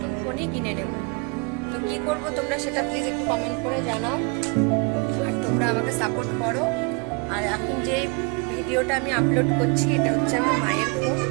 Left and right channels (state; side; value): quieter; left; 31.9 dB